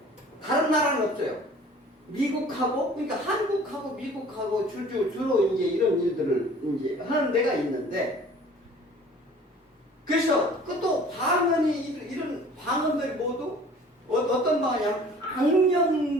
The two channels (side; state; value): both; normal; correlation 0.49